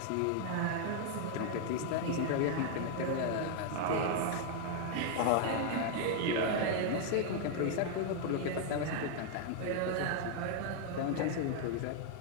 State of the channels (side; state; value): both; different; correlation 0.00